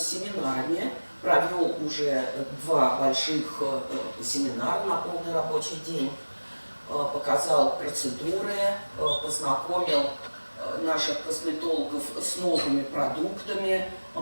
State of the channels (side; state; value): both; inverted; correlation -1.00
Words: семинарами, провел уже 2 больших семинара на полный рабочий день, показал процедуры, познакомил наших косметологов с новыми продуктами